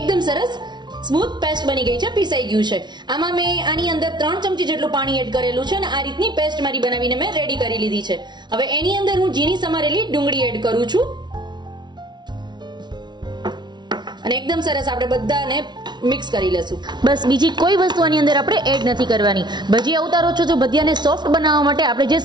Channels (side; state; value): left; late; 0.21 ms